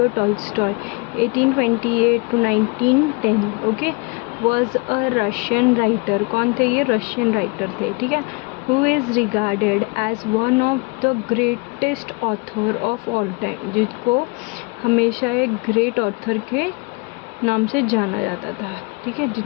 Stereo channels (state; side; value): quieter; right; 29.4 dB